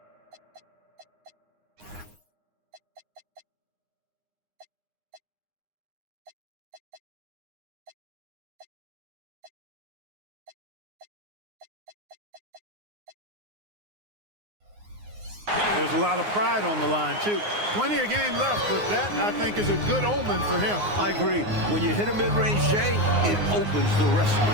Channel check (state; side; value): late; left; 9.6 ms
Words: there's a lot of pride on the line, too. Plenty of game left, but that, I think, is a good omen for him. I agree. When you hit a mid-range J, it opens the rest of